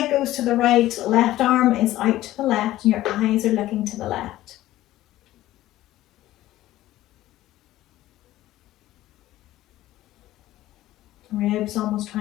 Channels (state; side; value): quieter; right; 15.1 dB